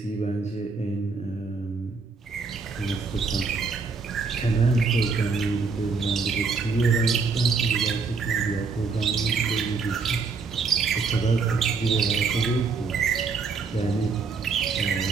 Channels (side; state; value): left; quieter; 4.8 dB